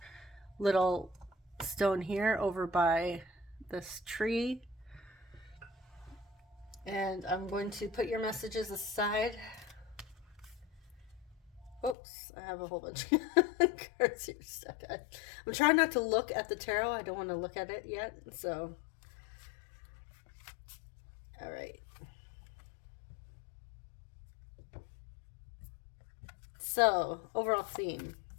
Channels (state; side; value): drops out; right; at 12.0 s